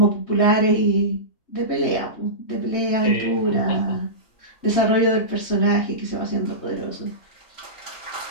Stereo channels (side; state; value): right; late; 3.2 ms